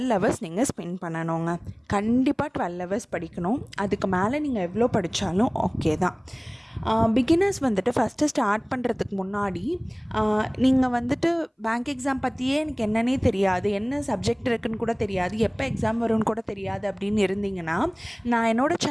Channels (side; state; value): both; identical; correlation 1.00